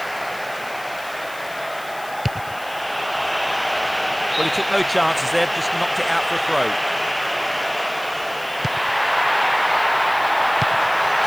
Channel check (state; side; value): noise; left; hiss, 19 dB below the sound